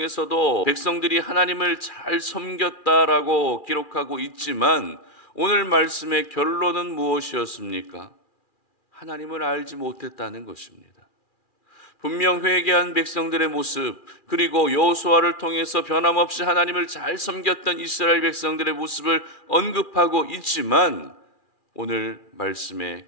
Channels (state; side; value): late; right; 2.4 ms